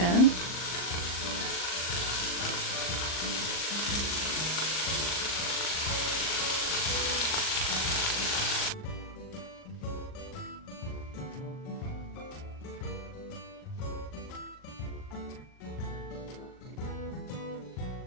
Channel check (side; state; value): right; late; 39 ms